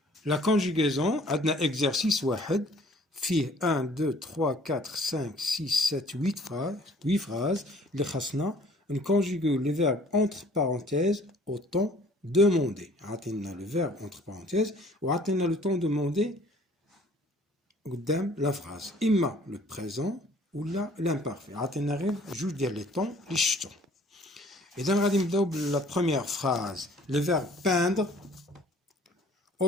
La conjugaison عندنا exercice واحد فيه 1 2 3 4 5 6 7 8 phrases اللي خاصنا نكونجوغيو les verbes entre parenthèses au temps demandé. عطينا le verbe entre parenthèses وعطينا le temps demandé قدام la phrase. إما le présent ولا l'imparfait. عطينا غير جوج ديال لي طون اللي شفتو. إذا غادي نبداو بلا première phrase. Le verbe peindre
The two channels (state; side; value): normal; both; correlation 0.55